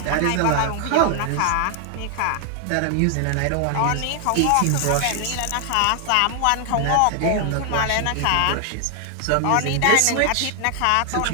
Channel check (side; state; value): both; different; correlation 0.00